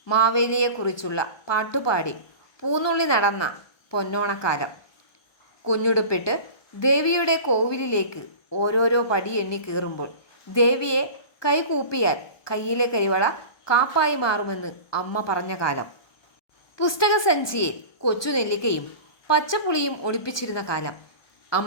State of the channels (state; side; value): late; right; 1.2 ms